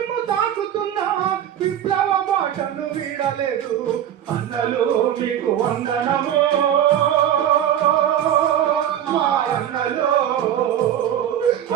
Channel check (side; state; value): left; quieter; 10.5 dB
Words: తాకుతున్నా విప్లవ బాటను వీడలేదు. అన్నలు మీకు వందనము మా అన్నలు